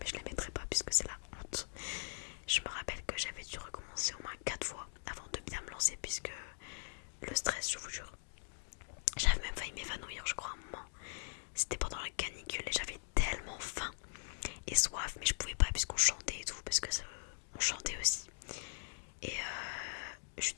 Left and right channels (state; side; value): silent; right; digital silence